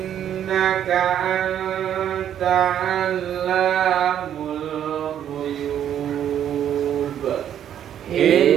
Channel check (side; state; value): left; quieter; 10.0 dB